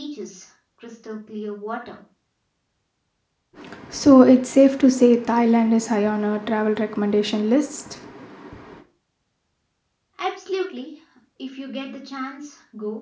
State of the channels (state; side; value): identical; both; correlation 1.00